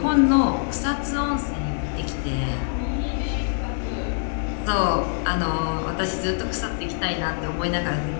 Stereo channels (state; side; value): silent; right; 56 dB below the other